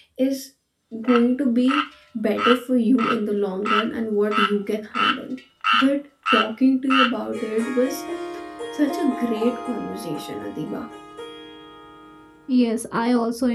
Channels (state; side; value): identical; both; correlation 1.00